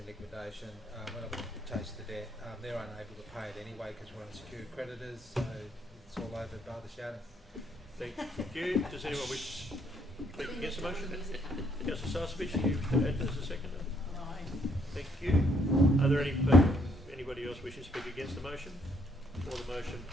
liquidation. We're not going to chase the debt. They're unable to pay it anyway because we're unsecured creditors, so it's all over bar the shadow. Thank you. Does anyone wish to speak against the motion? Councillor Starcevich, do you wish to add as a seconder? No. Thank you. Are there anybody else wishing to speak against the motion, or the motion,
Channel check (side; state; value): both; normal; correlation 0.70